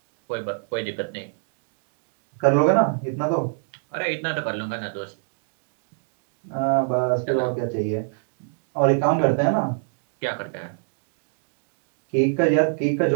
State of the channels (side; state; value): left; silent; digital silence